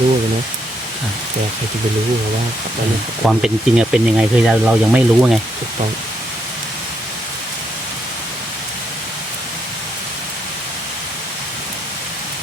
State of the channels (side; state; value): both; normal; correlation 0.76